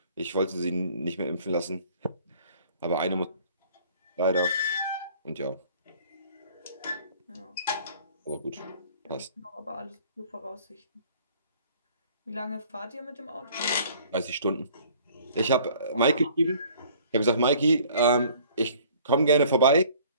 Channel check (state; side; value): inverted; both; correlation -0.54